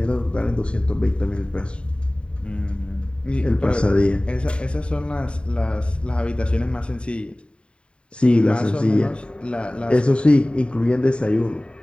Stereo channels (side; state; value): right; late; 0.054 ms